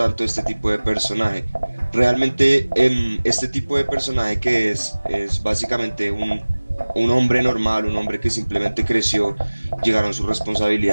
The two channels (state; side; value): inverted; both; correlation -1.00